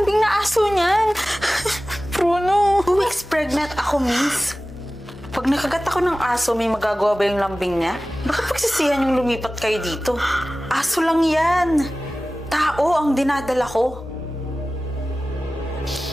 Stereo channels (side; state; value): both; normal; correlation 0.96